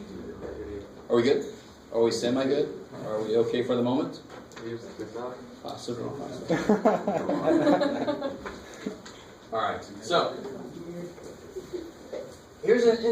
Are we good? Are we semi-good? Are we okay for the moment? Possibly. All right. So, here's an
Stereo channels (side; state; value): both; identical; correlation 1.00